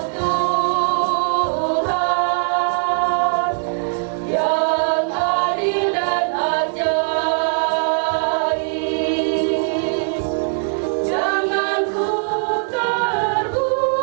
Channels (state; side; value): silent; left; 66 dB below the other